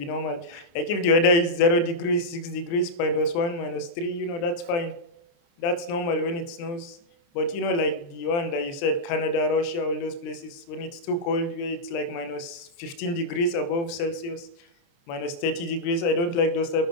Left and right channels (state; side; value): late; right; 29 ms